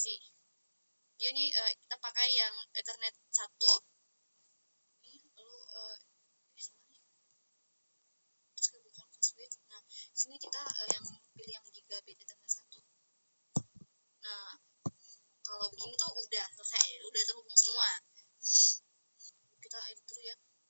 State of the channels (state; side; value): inverted; both; correlation -0.99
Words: Dia nih kita pakai yang Ethernet 1. Lalu terus kita buka ke switch. Nah, sini kita yang pilih yang gigabit Ethernet 1. Nah, kalau begini tuh udah selesai, udah terhubung semua. Kita edit dulu ya.